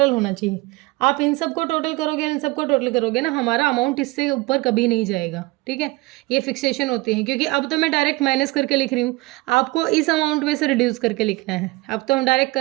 होना चाहिए। आप इन सबको टोटल करोगे, इन सबको टोटल करोगे ना, हमारा अमाउंट इससे ऊपर कभी नहीं जाएगा। ठीक है, ये फिक्सेशन होती है, क्योंकि अब तो मैं डायरेक्ट माइनस करके लिख रही हूँ, आपको इस अमाउंट में से रिड्यूस करके लिखना है। अब तो हम डायरेक्ट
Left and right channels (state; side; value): quieter; left; 22.6 dB